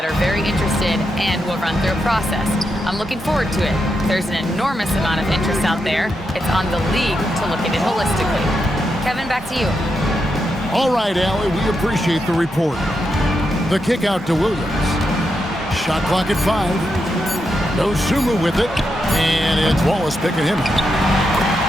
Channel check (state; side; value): normal; both; correlation 0.84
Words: are very interested and will run through a process. I'm looking forward to it. There's an enormous amount of interest out there. It's on the league to look at it holistically. Kevin, back to you. All right, Allie, we appreciate the report. The kick out to Williams. Shot clock at 5. No Sumu with it. And it's Wallace picking him up.